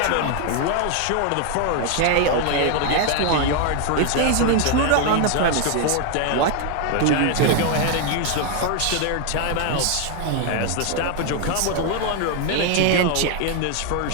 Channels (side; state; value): both; different; correlation 0.00